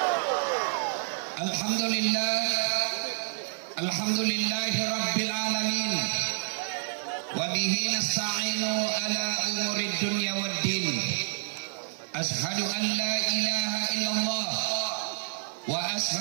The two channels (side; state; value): left; silent; digital silence